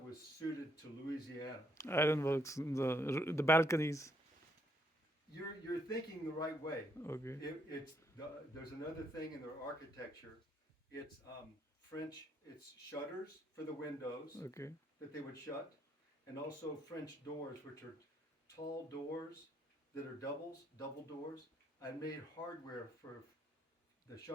suited to Louisiana. Ironworks, the balconies. You're thinking the right way. Okay. There's another thing in their architecture. It's French. It's shutters for the windows Okay. that they would shut, and also French doors, which are tall doors that are double doors. I made hardware for the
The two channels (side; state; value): both; normal; correlation 0.72